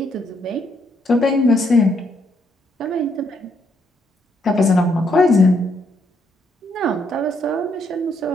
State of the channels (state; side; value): normal; both; correlation 0.74